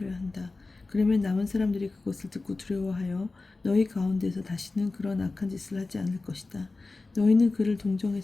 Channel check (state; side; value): quieter; right; 3.5 dB